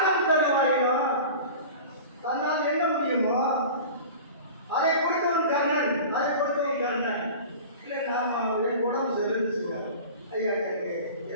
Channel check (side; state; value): both; inverted; correlation -0.37